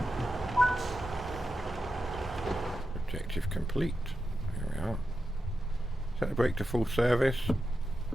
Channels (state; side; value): normal; both; correlation 0.89